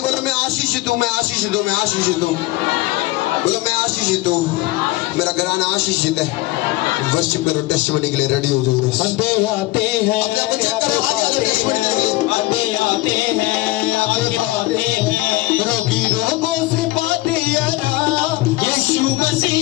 मैं आशीषित हूँ, मैं आशीषित हूँ, मैं आशीषित हूँ। बोलो, मैं आशीषित हूँ, मेरा घराना आशीषित है। वर्शिप करो, टेस्टिमनी के लिए रेडी हो जाओ। आते आते हैं, अपने आप को चेक करो, आगे टेस्टिमनी के लिए आते आते हैं, आगे बढ़ते हैं। रोगी रोगों से पाते आराम यीशु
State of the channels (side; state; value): right; quieter; 19.0 dB